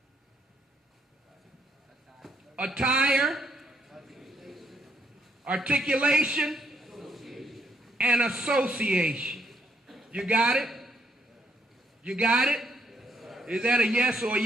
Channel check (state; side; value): normal; both; correlation 0.71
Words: attire, articulation, and association. You got it? You got it? Is that a yes or a